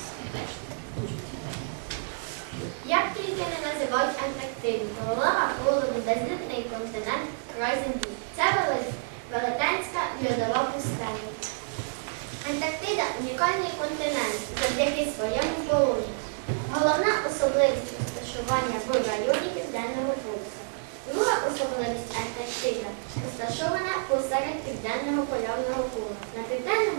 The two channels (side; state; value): left; silent; digital silence